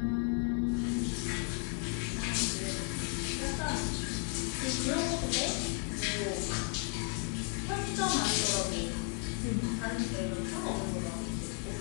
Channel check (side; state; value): right; quieter; 37.6 dB